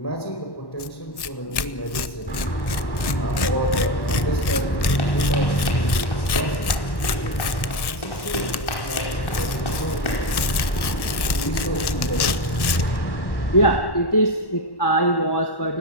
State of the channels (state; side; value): late; right; 1.1 ms